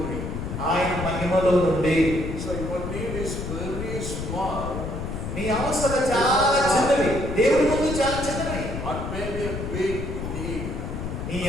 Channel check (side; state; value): left; noise; rumble, 5 dB below the sound